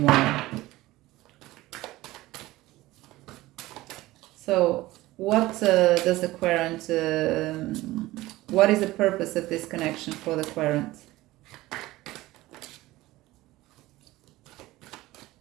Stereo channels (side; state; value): left; quieter; 18.0 dB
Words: So what does the querent, what is the purpose of this connection for the querent?